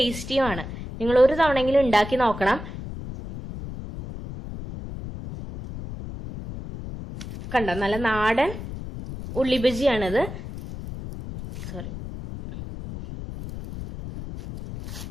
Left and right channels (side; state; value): left; noise; rumble, 10 dB below the sound